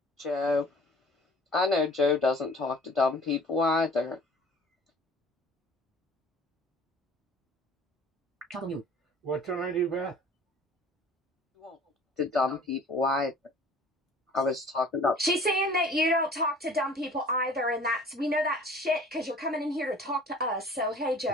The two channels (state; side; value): normal; both; correlation 0.48